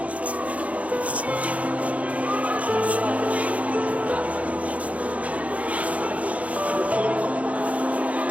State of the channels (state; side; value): late; left; 0.067 ms